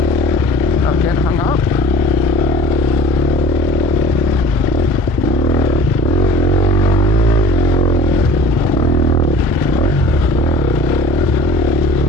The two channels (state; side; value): normal; both; correlation 0.45